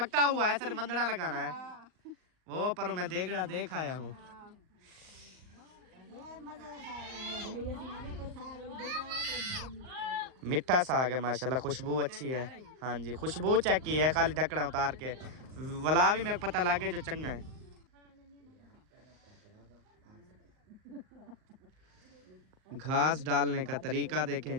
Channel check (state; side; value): late; left; 39 ms